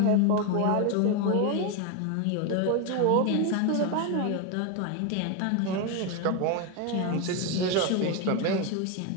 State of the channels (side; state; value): both; different; correlation 0.02